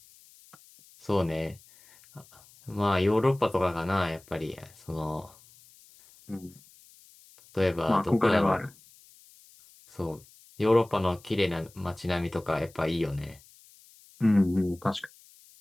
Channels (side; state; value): left; noise; hiss, 26 dB below the sound